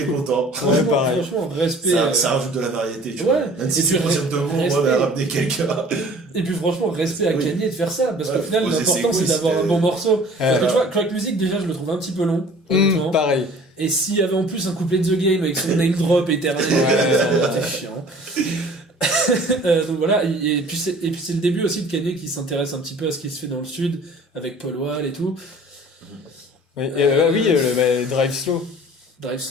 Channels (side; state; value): both; normal; correlation 0.48